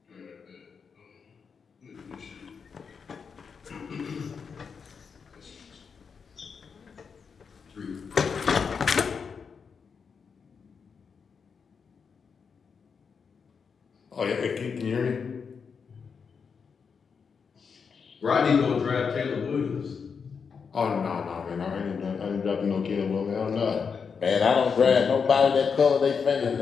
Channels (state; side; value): quieter; right; 5.9 dB